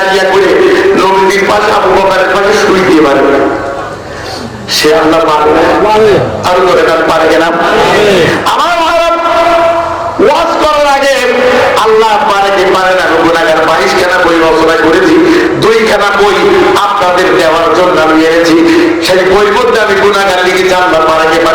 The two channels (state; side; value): identical; both; correlation 1.00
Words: করে নবীর পাশে আবু বকরের পাশে শুই দিয়ে পারে, সে আল্লাহ পারে না? আর জোরে বলেন পারে কিনা? আমার ওয়াজ করার আগে আল্লাহ পারে কি পারে না, গুনাহগার 22 খানা বই রচনা করেছি, 2 খানা বই আপনাদের দেওয়ার জন্য আমি এনেছি। সেই বইয়ের মধ্যে আমি গুনাহগার লিখেছি আল্লাহ পারে কি